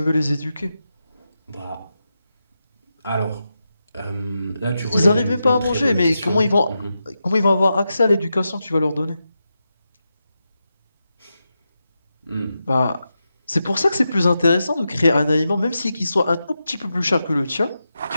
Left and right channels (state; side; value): inverted; both; correlation -0.89